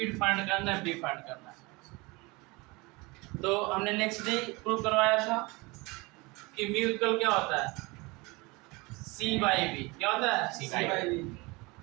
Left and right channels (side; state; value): left; quieter; 24.8 dB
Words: फाइंड करना है, बी फाइंड करना है। तो हमने नेक्स्ट डे प्रूव करवाया था कि म्यूकल क्या होता है? C/V। क्या होता है? C/V।